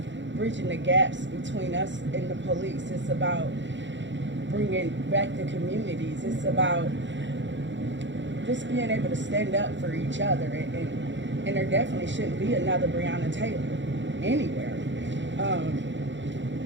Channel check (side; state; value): left; late; 0.54 ms